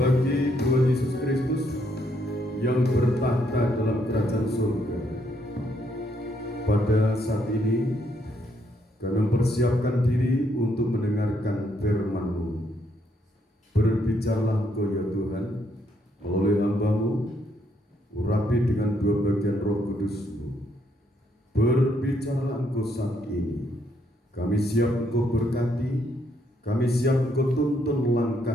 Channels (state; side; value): normal; both; correlation 0.73